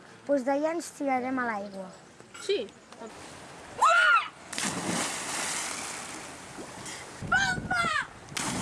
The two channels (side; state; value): both; identical; correlation 1.00